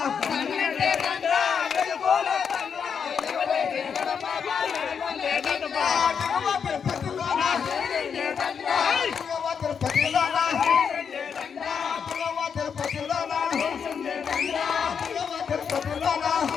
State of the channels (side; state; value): right; quieter; 6.8 dB